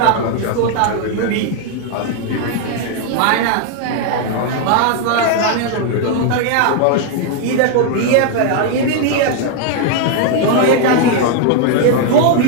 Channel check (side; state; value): both; different; correlation 0.00